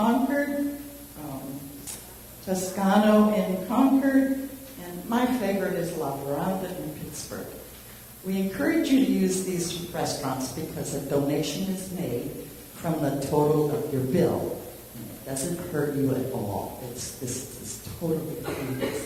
Toscano in Concord, and my favorite is La Veranda in Pittsburgh. We encourage you to use these restaurants because a donation is made from the total of your bill. And it doesn't hurt you at all. This is totally free.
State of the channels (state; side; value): identical; both; correlation 1.00